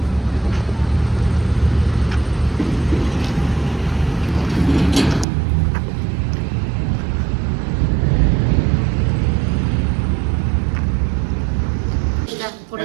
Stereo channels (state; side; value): drops out; left; at 5.2 s